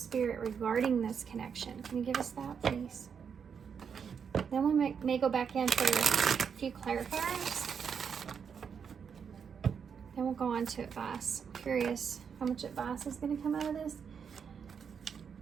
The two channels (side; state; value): left; quieter; 6.9 dB